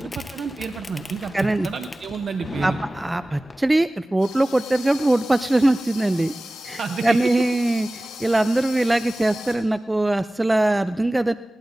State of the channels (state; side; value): normal; both; correlation 0.97